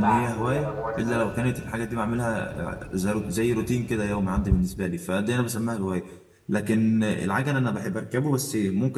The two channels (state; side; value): identical; both; correlation 1.00